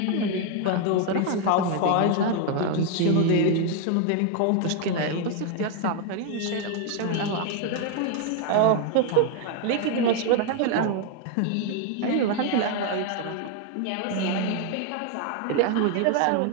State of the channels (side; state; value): both; different; correlation 0.01